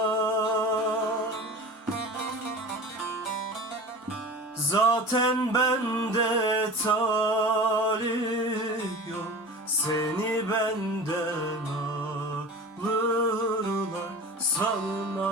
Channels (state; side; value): normal; both; correlation 0.35